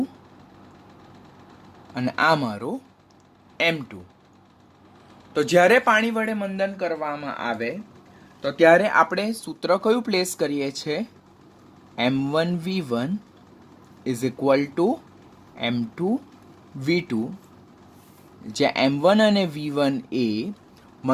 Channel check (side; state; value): both; identical; correlation 1.00